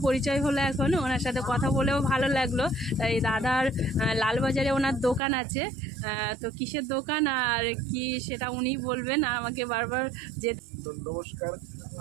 পরিচয় হলো এখন, ওনার সাথে কথা বলেও ভালো লাগলো। এই দাদার লালবাজারে ওনার দোকান আছে, তো কিসের দোকান আর কি সেটা উনি বলবেন, আমাকে বারবার যে নমস্কার।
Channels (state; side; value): drops out; left; at 5.2 s